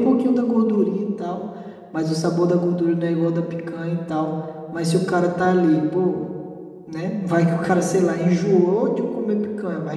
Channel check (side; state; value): both; identical; correlation 1.00